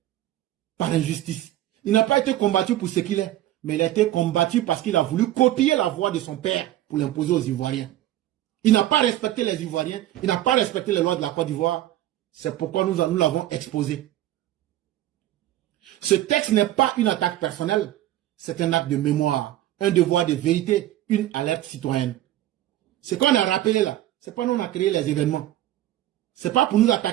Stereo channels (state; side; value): quieter; left; 14.0 dB